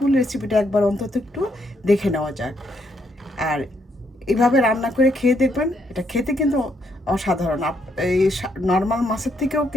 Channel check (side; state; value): both; normal; correlation 0.74